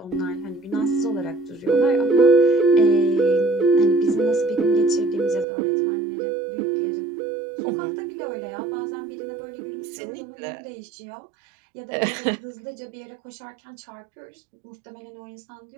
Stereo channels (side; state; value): left; drops out; at 5.5 s